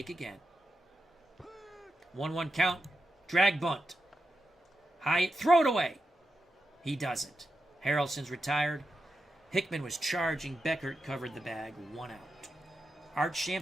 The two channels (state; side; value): normal; both; correlation 0.88